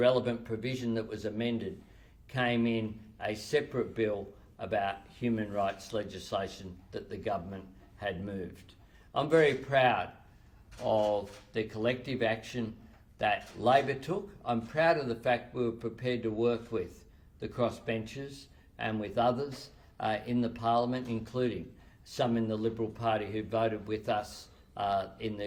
provision that was amended, came in a separate bill about human rights legislation that the government had moved. I'm very proud of the collective action that Labor took. I'm proud of the fact we were prepared to work with the crossbenchers and with others in the Parliament, including some in the Liberal Party who voted with us in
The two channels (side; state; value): both; identical; correlation 1.00